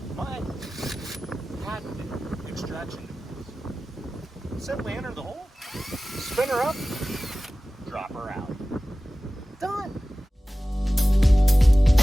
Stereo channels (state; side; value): normal; both; correlation 0.96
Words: My patented extraction tools. Simply enter the hole, spin her up, drop her out. Done.